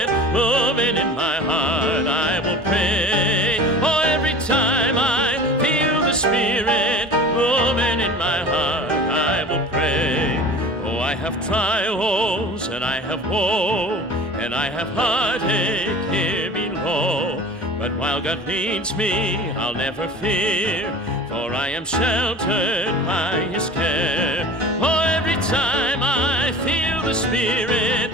moving in my heart, I will pray. Oh, every time I feel the Spirit moving in my heart, I will pray. Oh, I have trials and I have woe, and I have heartache here below. But while God leads me, I'll never fear, for I am sheltered by his care. Oh, every time I feel the Spirit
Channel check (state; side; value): normal; both; correlation 0.39